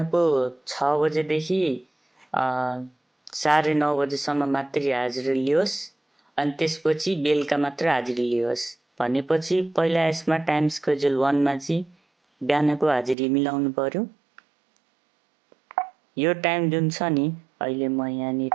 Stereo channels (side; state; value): left; drops out; at 13.2 s